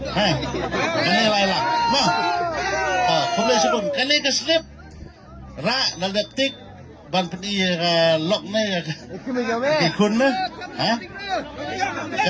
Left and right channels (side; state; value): both; identical; correlation 1.00